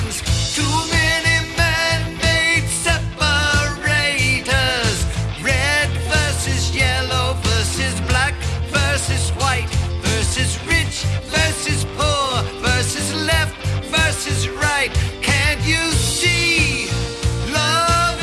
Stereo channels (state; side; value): identical; both; correlation 1.00